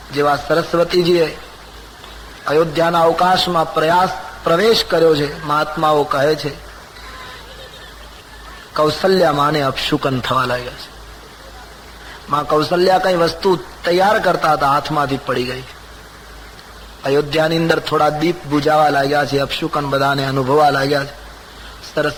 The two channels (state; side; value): identical; both; correlation 1.00